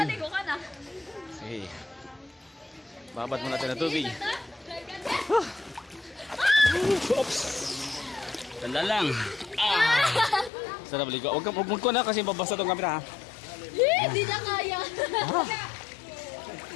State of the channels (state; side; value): drops out; right; at 10.5 s